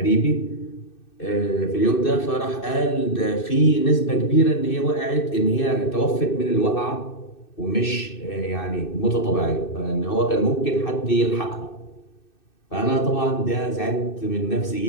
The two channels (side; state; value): right; late; 2.6 ms